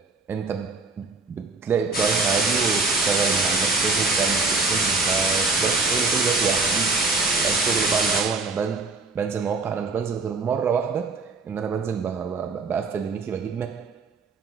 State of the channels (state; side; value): quieter; left; 3.8 dB